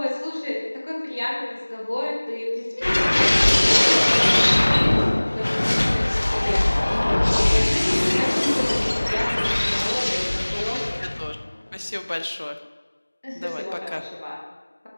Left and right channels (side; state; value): both; inverted; correlation -1.00